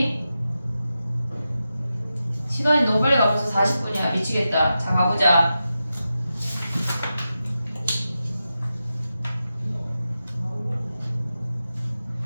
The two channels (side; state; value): both; inverted; correlation -0.90